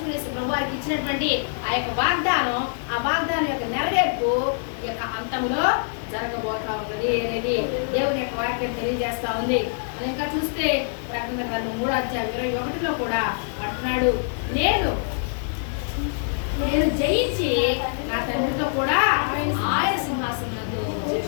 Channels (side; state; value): right; silent; digital silence